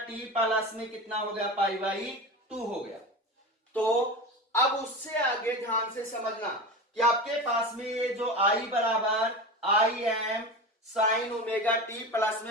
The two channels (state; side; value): normal; both; correlation 0.27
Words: प्लस में कितना हो गया, पाई बाई 2 हो गया। तो अब उससे आगे ध्यान से समझना कि आपके पास में ये जो I बराबर Im sine omega t plus